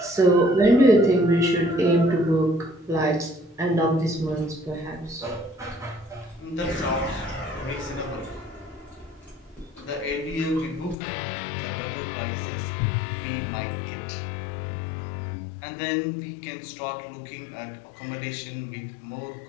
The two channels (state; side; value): drops out; right; at 11.0 s